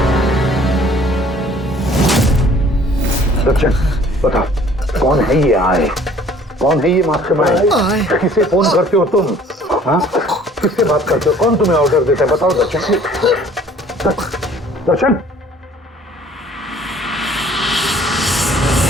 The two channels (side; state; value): both; normal; correlation 0.54